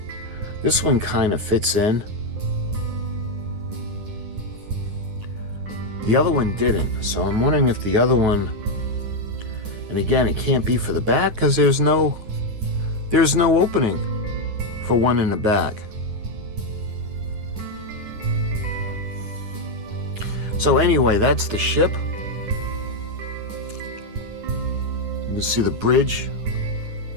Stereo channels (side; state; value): left; late; 9.7 ms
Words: This one kind of fits in. The other one didn't, so I'm wondering if the other one, and again, it can't be for the back because there's no opening for one in the back. So anyway, that's the ship. You can see the bridge